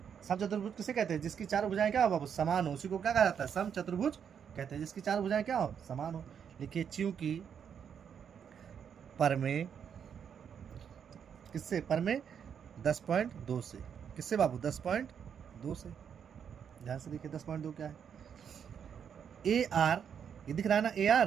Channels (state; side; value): quieter; left; 7.7 dB